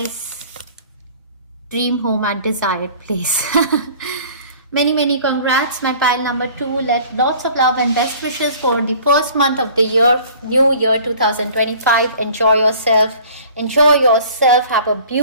dream home at desired place. Many congrats, my pile number 2. Lots of love and best wishes for the first month of the year, new year 2025. Enjoy yourself. Have a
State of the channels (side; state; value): both; inverted; correlation -0.48